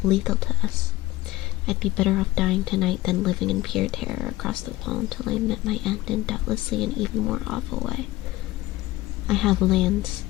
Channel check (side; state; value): right; quieter; 17.7 dB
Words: lethal to us. I'd be better off dying tonight than living in pure terror across the wall until I met my end in doubtlessly an even more awful way. I have lands,